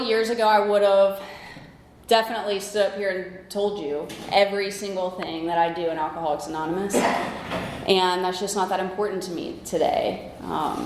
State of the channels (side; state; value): both; identical; correlation 1.00